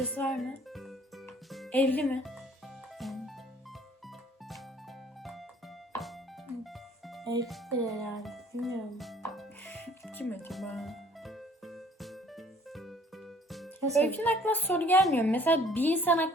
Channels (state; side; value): normal; both; correlation 0.56